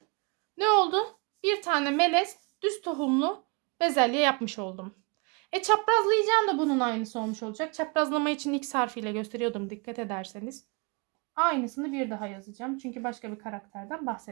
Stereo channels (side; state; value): left; quieter; 31.6 dB